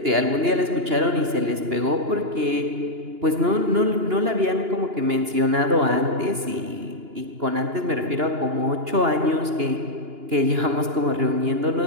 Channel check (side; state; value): left; late; 2.9 ms